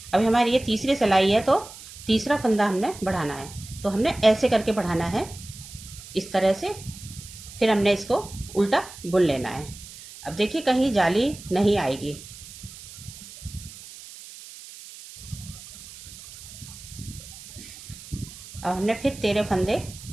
अभी हमारी ये तीसरी सिलाई है तो तीसरा फंदा हमने बढ़ाना है। तो हमने ऐसे करके बढ़ाना है, इस तरह से। फिर हमने इसको उल्टा बुन लेना है। अब देखिए कहीं जाली नहीं आएगी। अब हमने फिर 13 फंदे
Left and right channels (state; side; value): noise; right; hiss, 16 dB below the sound